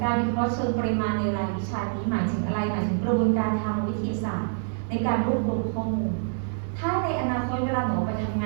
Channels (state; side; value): silent; left; 61 dB below the other